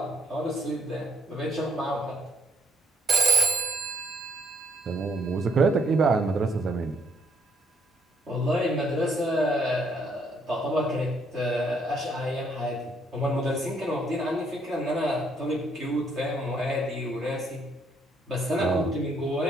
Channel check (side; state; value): both; normal; correlation 0.70